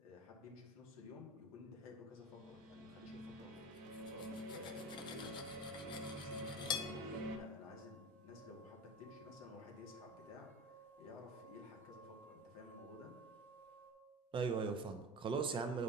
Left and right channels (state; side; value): normal; both; correlation 0.33